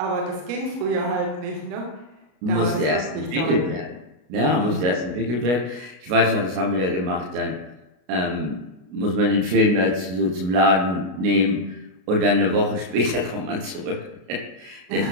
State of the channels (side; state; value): left; late; 33 ms